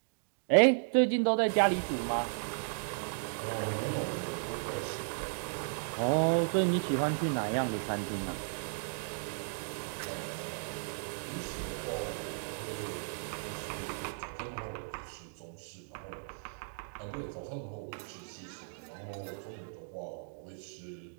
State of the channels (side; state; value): left; silent; digital silence